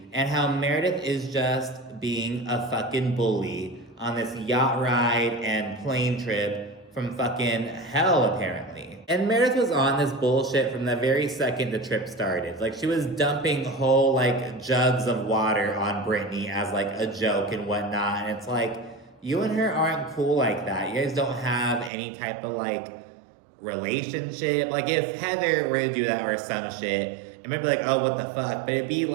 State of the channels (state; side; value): drops out; left; at 21.9 s